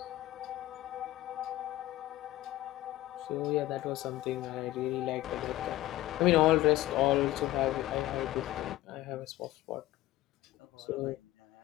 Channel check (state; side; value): quieter; right; 16.1 dB